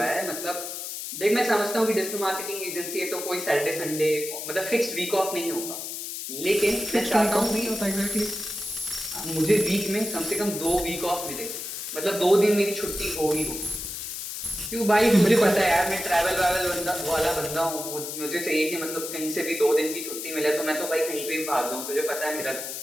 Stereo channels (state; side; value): noise; left; hiss, 7 dB below the sound